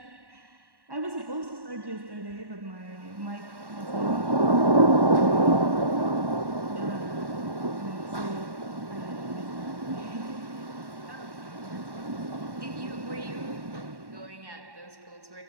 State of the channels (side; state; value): left; late; 1.1 ms